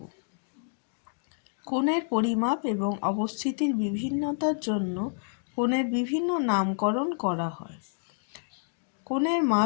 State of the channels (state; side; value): silent; right; digital silence